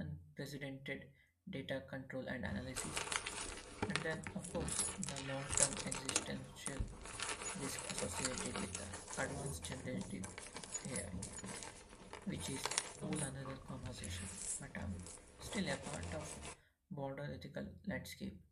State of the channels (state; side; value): identical; both; correlation 1.00